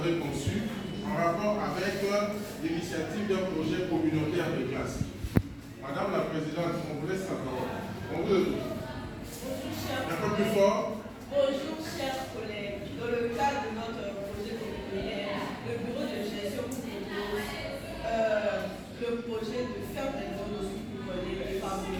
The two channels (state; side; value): identical; both; correlation 1.00